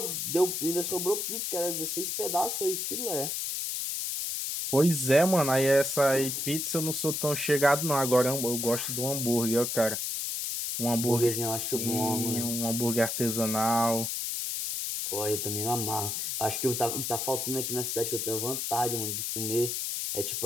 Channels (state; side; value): noise; left; hiss, 2 dB below the sound